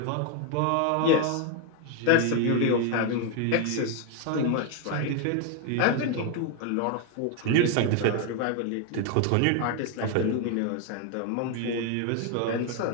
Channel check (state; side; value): different; both; correlation 0.01